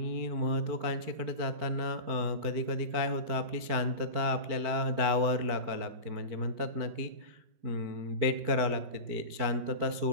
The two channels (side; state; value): left; late; 4.6 ms